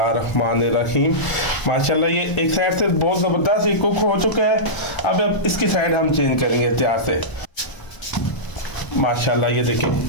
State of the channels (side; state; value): right; late; 1.0 ms